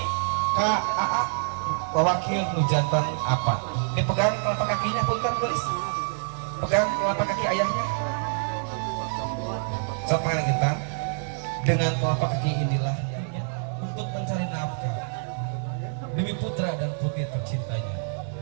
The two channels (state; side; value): silent; left; digital silence